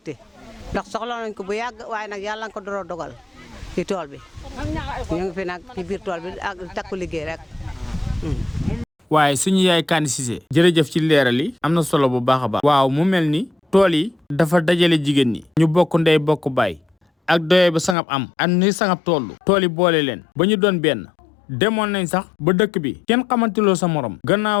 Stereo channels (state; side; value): drops out; right; at 17.9 s